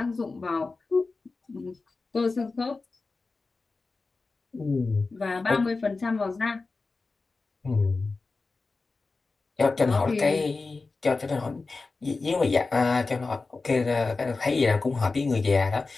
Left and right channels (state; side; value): quieter; right; 3.9 dB